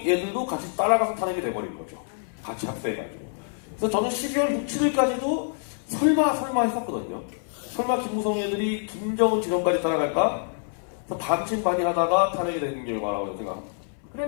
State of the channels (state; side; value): silent; right; 61 dB below the other